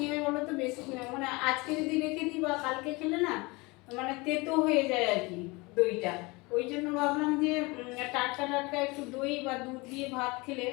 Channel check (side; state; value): right; quieter; 25.1 dB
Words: হয় বলো তো, বেশি মানে আজকে যদি রেখে দিই বা কালকে খেলে না মানে তেতো হয়ে যায় আর কি দইটা। ওই জন্য ভাবলাম যে টাটকা টাটকা একটু দই বা দুধ দিয়ে ভাত খেলে